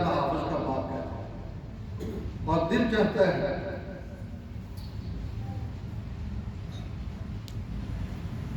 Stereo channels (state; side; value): identical; both; correlation 1.00